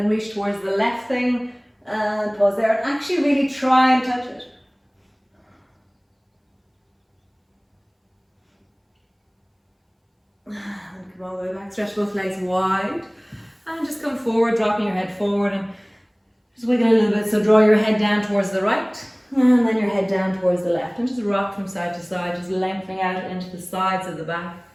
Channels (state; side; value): identical; both; correlation 1.00